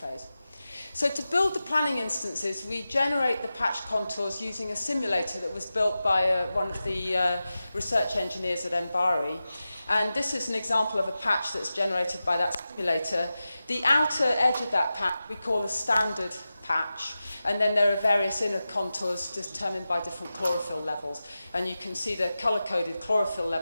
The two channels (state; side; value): inverted; both; correlation -0.94